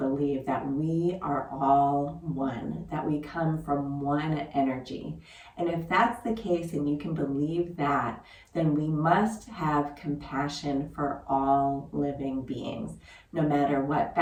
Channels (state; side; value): identical; both; correlation 1.00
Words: that we are all one, that we come from one energy. And if that's the case and you can believe that, then we must have compassion for all living beings, no matter what